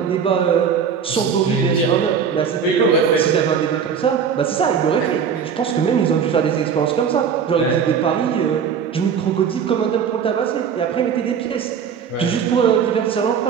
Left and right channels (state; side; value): quieter; left; 7.0 dB